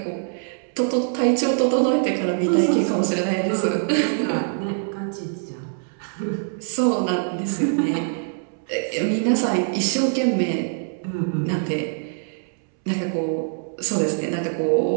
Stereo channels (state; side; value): silent; left; 63 dB below the other